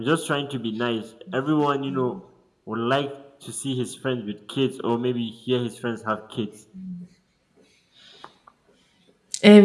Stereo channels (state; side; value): identical; both; correlation 1.00